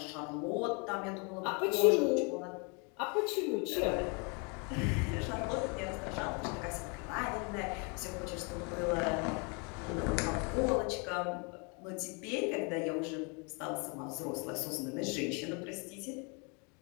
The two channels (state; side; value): quieter; right; 33.8 dB